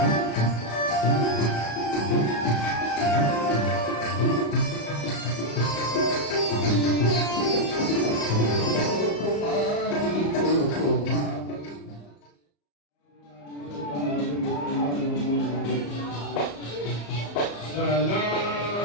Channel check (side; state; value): right; late; 34 ms